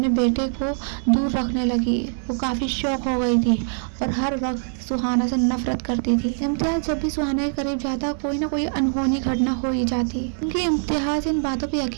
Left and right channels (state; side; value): silent; left; digital silence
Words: बेटे को दूर रखने लगी। वो काफ़ी शौक हो गई थी और हर वक्त सुहाना से नफरत करती थी। इम्तियाज जब भी सुहाना के करीब जाता कोई ना कोई अनहोनी घटना हो ही जाती। क्योंकि इम्तियाज इन बातों पे